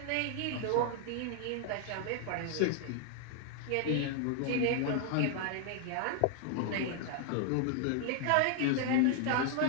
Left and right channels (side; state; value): both; different; correlation 0.00